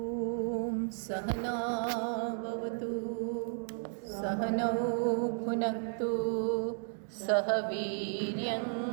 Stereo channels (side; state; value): left; silent; digital silence